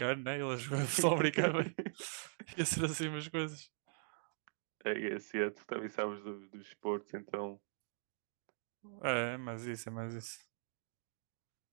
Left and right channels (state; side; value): silent; left; digital silence